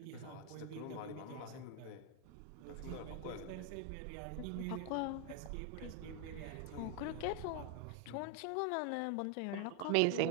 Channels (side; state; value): both; different; correlation 0.01